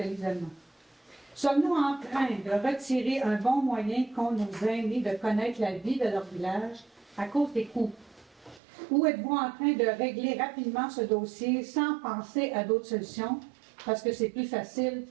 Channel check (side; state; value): left; drops out; at 8.6 s